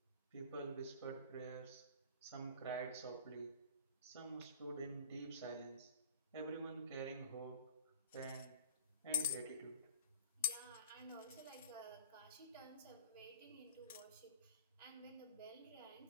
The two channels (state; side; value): inverted; both; correlation -0.43